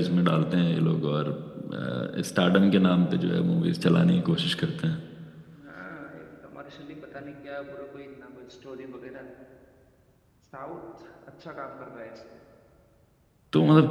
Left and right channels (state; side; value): identical; both; correlation 1.00